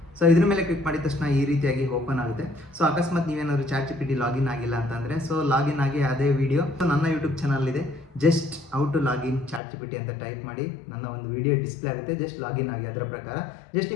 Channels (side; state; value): right; drops out; at 9.6 s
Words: ಸೊ ಇದ್ರ ಮೇಲೆ ಕ್ಲಿಕ್ ಮಾಡಿದ ತಕ್ಷಣ ಈ ರೀತಿಯಾಗಿ ಓಪನ್ ಆಗುತ್ತೆ. ಸೊ ಅಕಸ್ಮಾತ್ ನೀವೇನಾದರೂ ಚಾಟ್ ಜಿಪಿಟಿ ಲಾಗಿನ್ ಆಗಿಲ್ಲ ಅಂತಂದರೆ ಸೊ ಲಾಗಿನ್ ಆಗಿ ಅದೇ ವಿಡಿಯೋ ನನ್ನ ಯೂಟ್ಯೂಬ್ ಚಾನಲ್ ಇದೆ. Just how to login ChatGPT ಅಂತ ಟೈಪ್ ಮಾಡಿ, ನನ್ನ ಒಂದು ವಿಡಿಯೋ ಡಿಸ್ಪ್ಲೇ ಆಗುತ್ತೆ. ಜಸ್ಟ್ ಲಾಗಿನ್ ಆಗಿ ಅದರ ಪ್ರಕಾರ ಜಸ್ಟ್